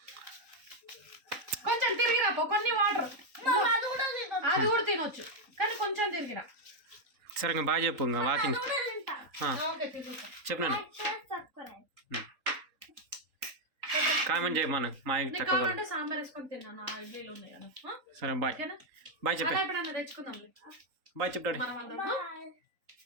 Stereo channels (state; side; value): late; left; 3.7 ms